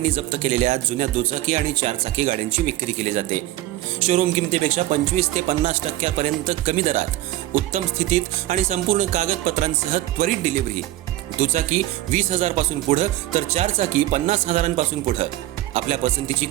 जप्त केलेल्या जुन्या दुचाकी आणि चारचाकी गाड्यांची विक्री केली जाते। शोरूम किमतीपेक्षा 25 ते 50% कमी दरात, उत्तम स्थितीत आणि संपूर्ण कागदपत्रांसह त्वरित डिलिव्हरी। दुचाकी 20,000 पासून पुढे तर चारचाकी 50,000 पासून पुढे। आपल्या पसंतीची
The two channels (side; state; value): left; quieter; 15.7 dB